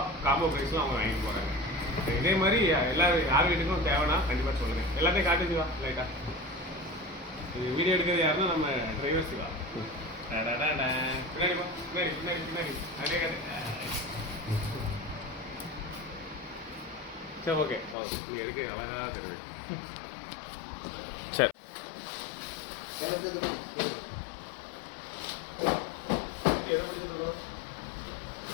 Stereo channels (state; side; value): drops out; right; at 17.9 s